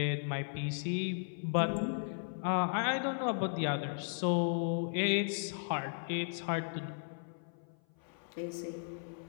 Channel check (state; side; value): silent; right; 54 dB below the other